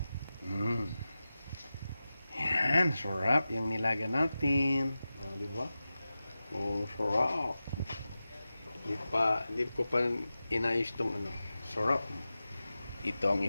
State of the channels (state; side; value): inverted; both; correlation -0.94